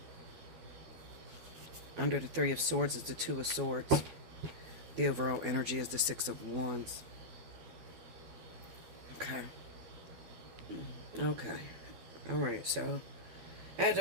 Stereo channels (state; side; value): late; left; 12 ms